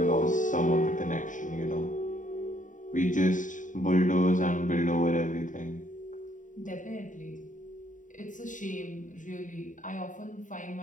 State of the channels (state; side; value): late; right; 0.37 ms